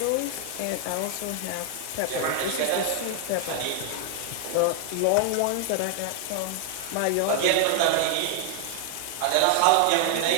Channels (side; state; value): both; different; correlation 0.00